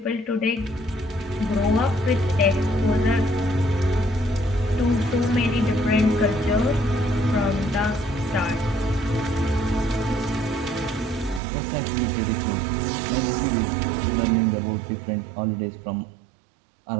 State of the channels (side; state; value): left; drops out; at 11.4 s